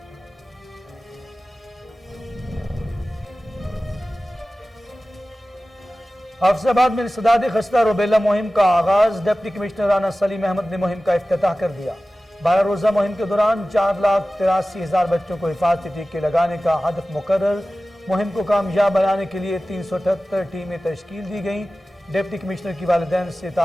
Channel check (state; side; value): normal; both; correlation 0.96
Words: حافظ آباد میں انسداد خستہ روبیلا مہم کا آغاز۔ ڈپٹی کمشنر رانا سلیم احمد نے مہم کا افتتاح کر دیا۔ 12 روزہ مہم کے دوران 4,83,000 بچوں کو حفاظتی ٹیکے لگانے کا ہدف مقرر۔ مہم کو کامیاب بنانے کے لیے 378 ٹیمیں تشکیل دی گئیں۔ ڈپٹی کمشنر کی والدین سے